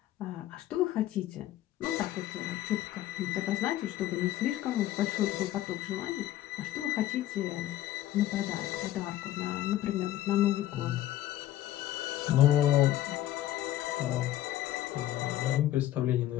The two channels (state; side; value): quieter; right; 13.7 dB